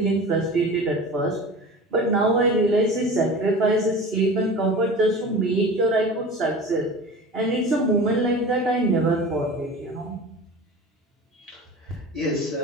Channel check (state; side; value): normal; both; correlation 0.36